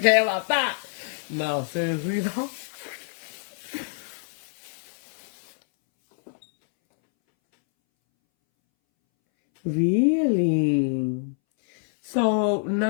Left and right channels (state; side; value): silent; right; 61 dB below the other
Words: about that. No, seriously though. Really? So,